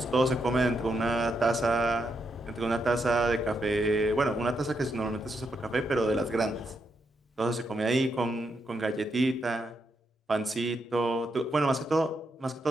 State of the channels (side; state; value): both; normal; correlation 0.81